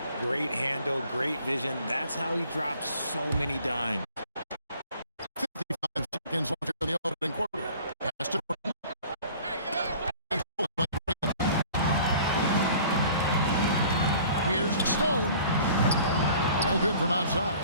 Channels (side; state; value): both; inverted; correlation -0.49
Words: Great handle, great vision. That's how he drops so many dimes. 55 seconds left in the opening quarter. Pass to Burton. Here's Stone. No good from outside.